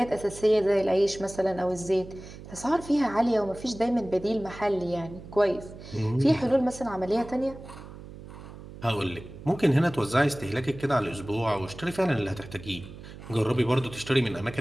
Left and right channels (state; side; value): noise; right; hum, 15 dB below the sound